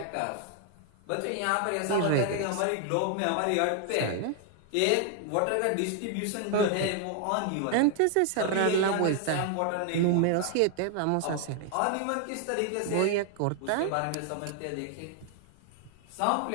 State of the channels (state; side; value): different; both; correlation 0.00